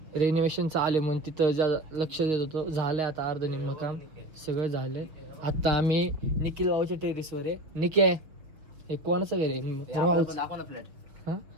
रेनोव्हेशन चालू आहे म्हणून तिथं लक्ष देत होतो. झालं आता अर्ध निम्म काम सगळं झालं. आता आम्ही निखिल भाऊच्या टेरिसवर आहे. निकी आहे, हे कोणाचं घर आहे? भाऊच. दाखव ना फ्लॅट. हा,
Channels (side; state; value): left; late; 6.7 ms